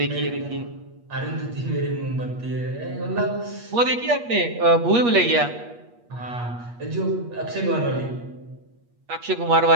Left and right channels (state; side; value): late; left; 8.4 ms